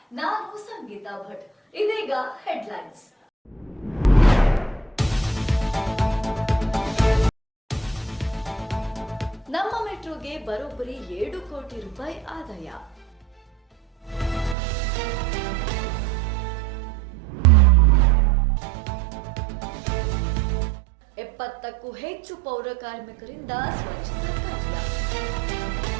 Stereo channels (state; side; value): drops out; left; at 14.6 s